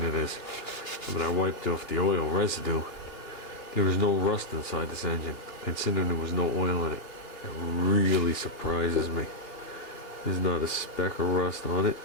it is. I mean, I wiped off the oil residue. There was no rust inside this engine, considering there was no oil in it. It really surprises me. There's not a speck of rust on it.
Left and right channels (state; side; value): late; right; 3.0 ms